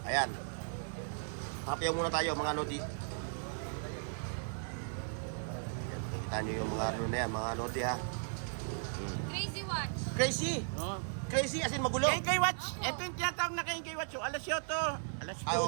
Ayan. Tapiyaw muna tayo mga Lodi. Ayan, makikita nyo yung mga ano na yan, mga Lodi ha. Crazy watch. Crazy! No. Crazy as in magulo. Kay Watch. Ito yung tinatawag na kay Watch. Alas 8. Alas 8. Ay,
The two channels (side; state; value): left; silent; 54 dB below the other